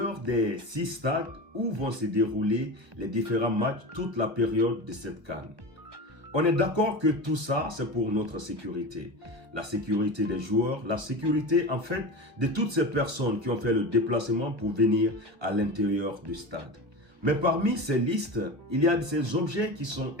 des 6 stades où vont se dérouler les différents matchs toute la période de cette CAN. On est d'accord que tout ça, c'est pour notre sécurité. La sécurité des joueurs, la sécurité en fait de toutes ces personnes qui ont fait le déplacement pour venir à l'intérieur du stade. Mais parmi ces listes, il y a ces objets qui sont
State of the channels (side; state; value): left; late; 1.1 ms